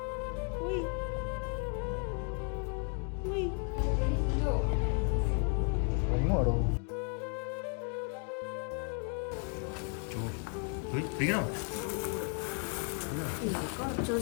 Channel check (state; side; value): quieter; right; 40.0 dB